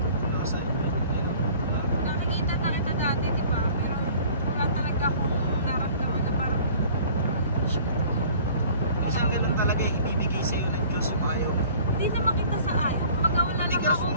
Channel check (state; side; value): inverted; both; correlation -0.49